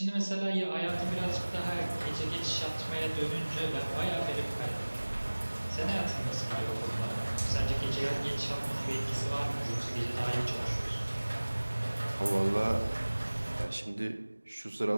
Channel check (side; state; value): both; inverted; correlation -1.00